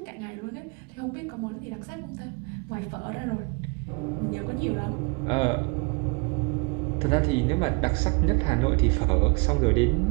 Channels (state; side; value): quieter; left; 30.9 dB